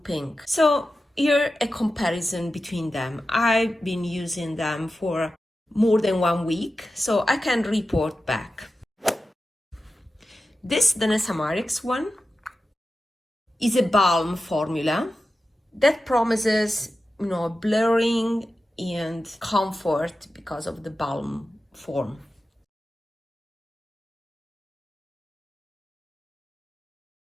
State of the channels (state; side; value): normal; both; correlation 0.92